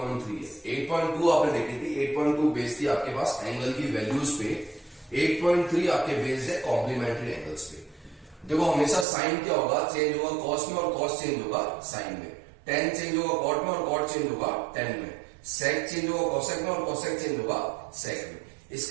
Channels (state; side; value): drops out; left; at 9.1 s